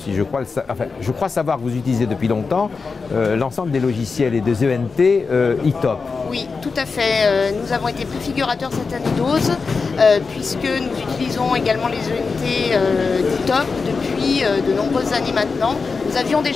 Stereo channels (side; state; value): right; quieter; 4.7 dB